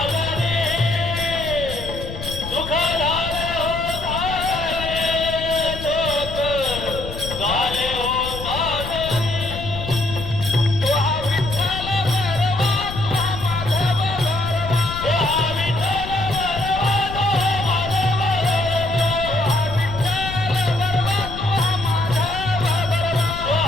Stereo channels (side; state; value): left; noise; rumble, 9 dB below the sound